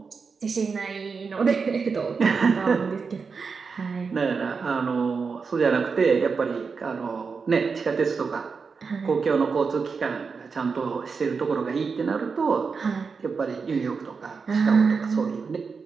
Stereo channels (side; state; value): left; quieter; 5.2 dB